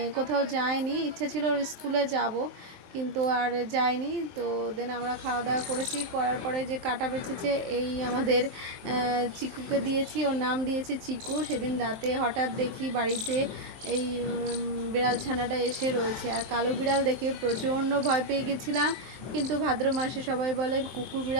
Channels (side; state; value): left; late; 23 ms